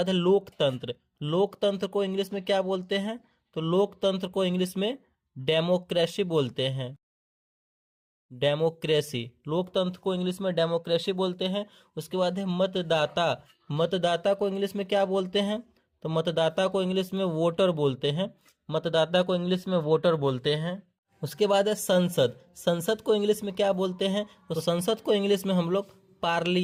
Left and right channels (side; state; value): both; identical; correlation 1.00